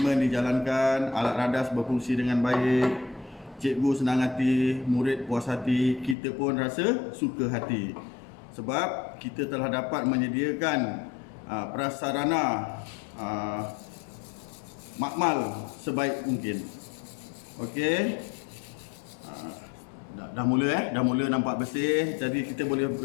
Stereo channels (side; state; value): right; drops out; at 6.2 s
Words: dijalankan, alat radas berfungsi dengan baik, cikgu senang hati, murid puas hati, kita pun rasa suka hati. Sebab kita telah dapat menyediakan prasarana makmal sebaik mungkin. Okey. Dah mula nampak bersih. Jadi kita boleh